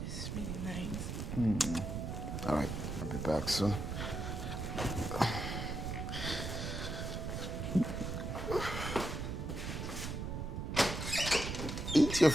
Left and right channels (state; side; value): noise; right; rumble, 4 dB below the sound